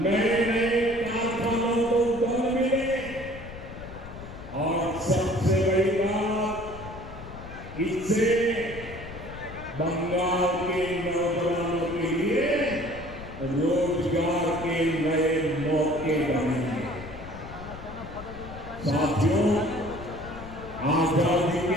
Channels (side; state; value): left; noise; rumble, 13 dB below the sound